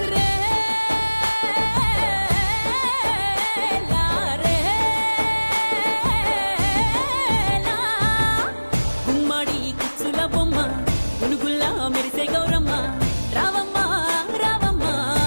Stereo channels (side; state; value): both; inverted; correlation -1.00